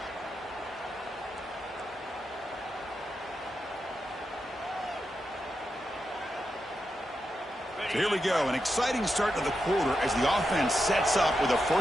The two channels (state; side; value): normal; both; correlation 0.87